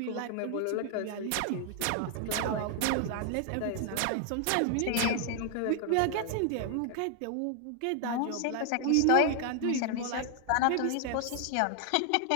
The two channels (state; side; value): different; both; correlation 0.00